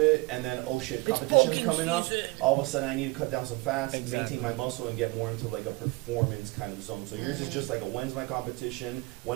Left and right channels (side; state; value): left; quieter; 24.2 dB